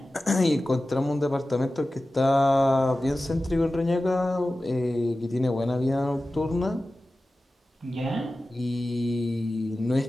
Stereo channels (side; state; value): both; normal; correlation 0.95